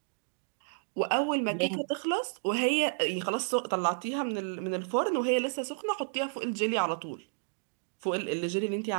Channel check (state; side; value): silent; left; digital silence